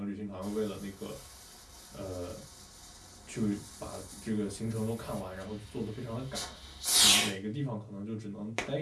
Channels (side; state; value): both; identical; correlation 1.00